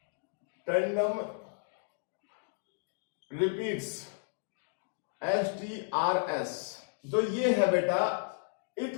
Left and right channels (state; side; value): silent; right; digital silence